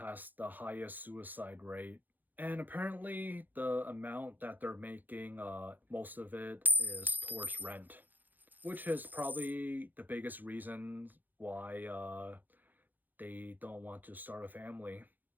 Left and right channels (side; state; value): left; late; 0.086 ms